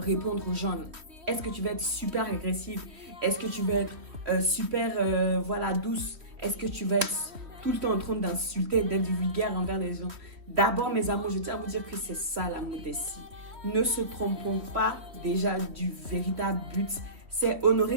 aux gens. Est-ce que tu vas être super agressive? Est-ce que tu vas être super douce? Est-ce que tu vas être tout le temps en train d'insulter, d'être vulgaire envers les gens? D'abord, mes amours, je tiens à vous dire que c'est ça la modestie. Ne se trompons pas déjà du véritable but. C'est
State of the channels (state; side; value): late; left; 3.1 ms